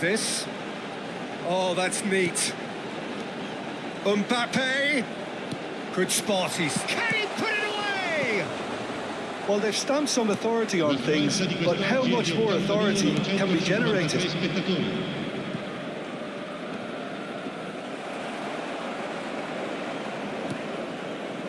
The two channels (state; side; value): identical; both; correlation 1.00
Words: Oh, that's neat. Mbappe. Good spot, can he put it away? Well, they've stamped some authority on things, but how much more authority can be generated?